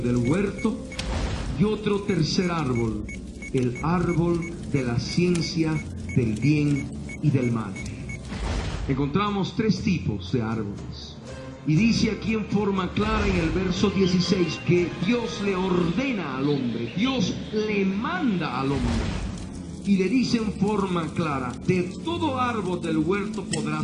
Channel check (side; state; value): both; identical; correlation 1.00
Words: del huerto. Y otro tercer árbol, el árbol de la ciencia del bien y del mal. Encontramos tres tipos de árboles. Y dice aquí en forma clara en el verso 16 que Dios le ordena al hombre, Dios le manda al hombre. Y le dice en forma clara: de todo árbol del huerto